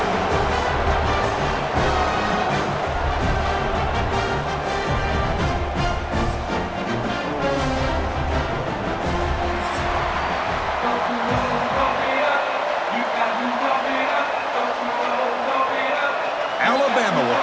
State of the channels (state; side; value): identical; both; correlation 1.00